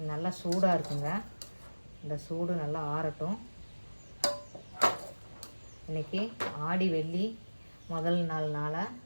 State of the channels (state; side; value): inverted; both; correlation -1.00